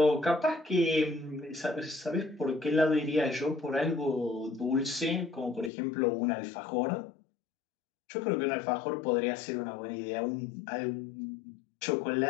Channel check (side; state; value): right; drops out; at 5.7 s